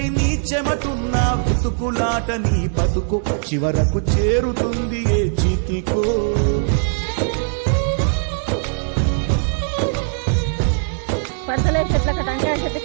నీ చెమటున్న వెతుకులాట నీ బతుకు చివరకు చేరుతుంది ఏ చితికో పడతలే చెట్ల టంకాయ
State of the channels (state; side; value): silent; left; digital silence